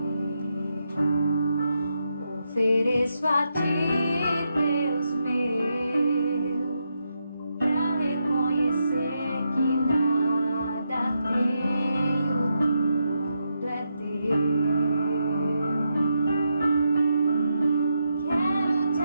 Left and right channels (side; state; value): both; inverted; correlation -0.83